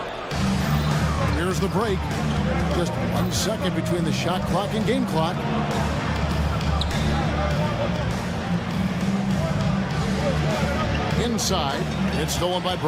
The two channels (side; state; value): both; identical; correlation 1.00